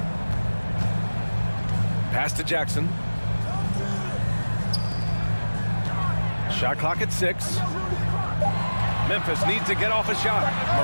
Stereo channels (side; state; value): both; inverted; correlation -1.00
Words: Pass to Jackson. Shot clock at 6. Memphis needs to get off a shot.